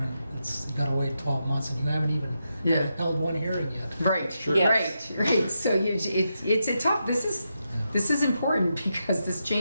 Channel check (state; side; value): inverted; both; correlation -0.86